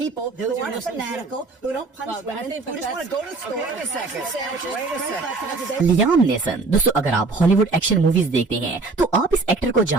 who aren't fanatical, who don't punish women, who just want to go to the store, Wait a second. Wait a second. Liam nation. दोस्तों, अगर आप Hollywood action movies देखते हैं तो आप इस actor को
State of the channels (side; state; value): left; quieter; 3.8 dB